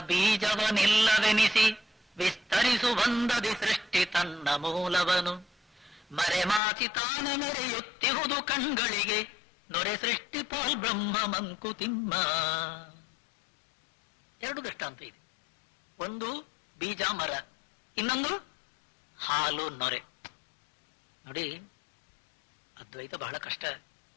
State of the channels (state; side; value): drops out; right; at 6.6 s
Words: ಬೀಜವನಿಲ್ಲವೆನಿಸಿ ವಿಸ್ತರಿಸು ಬಂದದಿ ಸೃಷ್ಟಿ ತನ್ನ ಮೂಲವನು. ಮರೆಮಾಚಿ ತಾನ ಮೆರೆಯುತ್ತಿಹುದು ಕಣ್ಗಳಿಗೆ ನೊರೆ ಸೃಷ್ಟಿ ಪಾಲ್ ಬ್ರಹ್ಮ ಮಂಕುತಿಮ್ಮ. ಎರಡು ದೃಷ್ಟಾಂತ ಇದೆ. ಒಂದು ಬೀಜ ಮರ, ಇನ್ನೊಂದು ಹಾಲು ನೊರೆ. ನೋಡಿ, ಅದ್ವೈತ ಬಹಳ ಕಷ್ಟ.